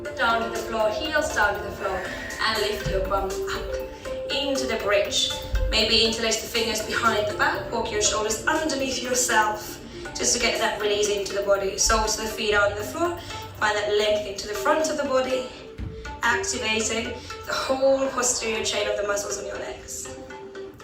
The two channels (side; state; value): both; identical; correlation 1.00